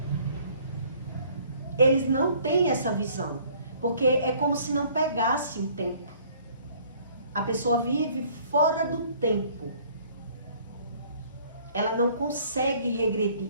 Eles não têm essa visão. Porque é como se não pegasse o tempo. A pessoa vive fora do tempo. Ela não consegue regredir.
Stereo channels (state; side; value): inverted; both; correlation -0.57